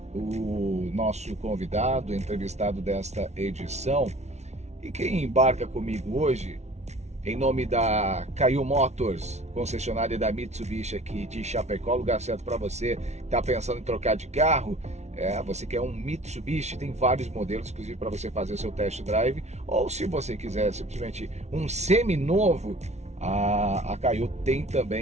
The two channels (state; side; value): late; left; 0.32 ms